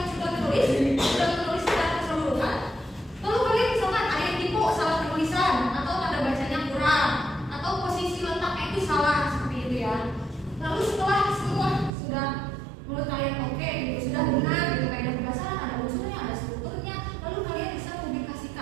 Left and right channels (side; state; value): left; drops out; at 11.9 s